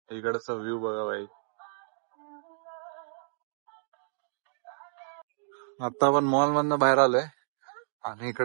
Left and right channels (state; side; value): silent; left; digital silence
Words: इकडचा व्ह्यू बघा भाई. आता आपण मॉल मधनं बाहेर आलोय आणि